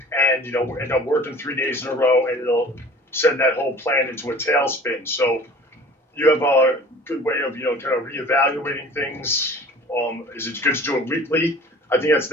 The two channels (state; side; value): normal; both; correlation 0.45